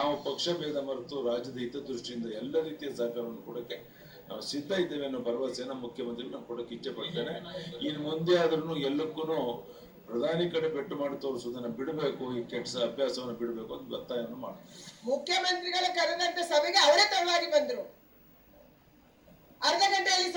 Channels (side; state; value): both; identical; correlation 1.00